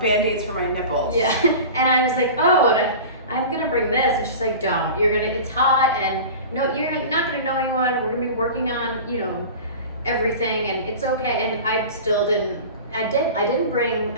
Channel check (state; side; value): inverted; both; correlation -0.35